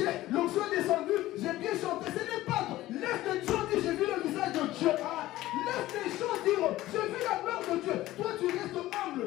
l'onction est descendue, j'ai bien chanté. Ce n'est pas à toi. Laisse les gens dire, j'ai vu le visage de Dieu. Laisse les gens dire, j'ai vu la gloire de Dieu. Toi, tu restes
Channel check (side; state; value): right; quieter; 16.0 dB